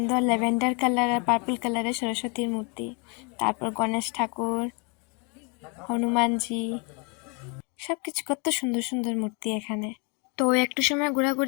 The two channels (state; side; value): quieter; right; 33.5 dB